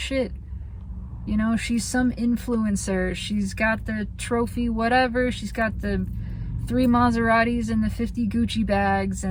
You know, she's some influencer. She's got the trophy, whatever. She's got the 3 Maseratis and the 50 Gucci bags,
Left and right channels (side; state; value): both; identical; correlation 1.00